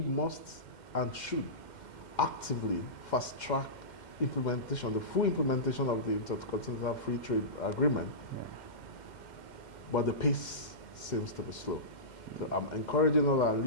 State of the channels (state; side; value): late; right; 2.1 ms